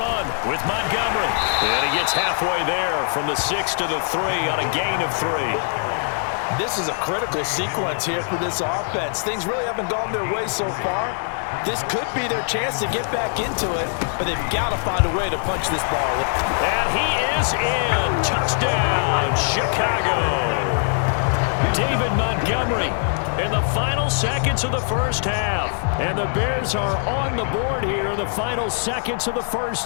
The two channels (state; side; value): silent; right; digital silence